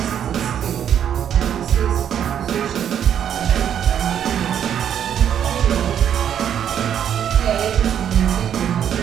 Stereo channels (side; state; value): left; quieter; 9.3 dB